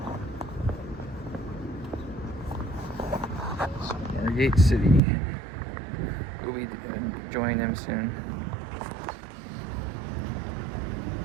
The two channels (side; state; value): left; drops out; at 5.0 s